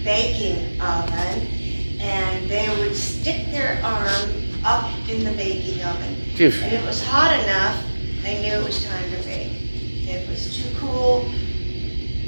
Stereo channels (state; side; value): inverted; both; correlation -1.00